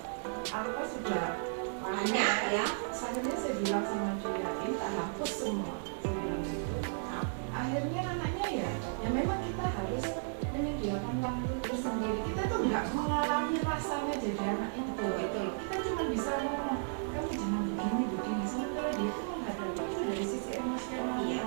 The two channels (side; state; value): left; silent; digital silence